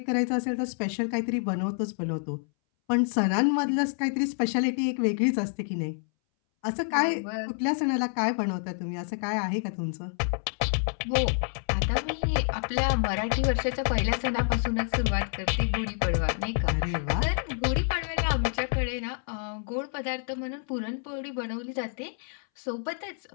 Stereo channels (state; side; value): silent; right; 59 dB below the other